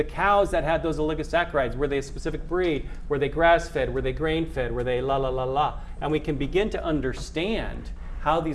cows that had those oligosaccharides, were they a specific breed? Were they grass-fed? Were they grain-fed? Were they la? And we can begin to understand how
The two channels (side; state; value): both; identical; correlation 1.00